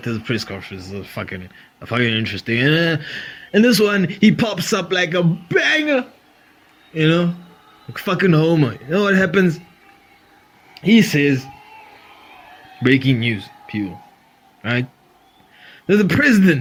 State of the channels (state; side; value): identical; both; correlation 1.00